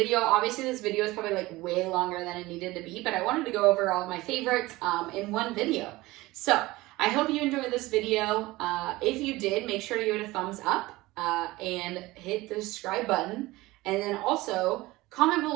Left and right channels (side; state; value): left; quieter; 19.6 dB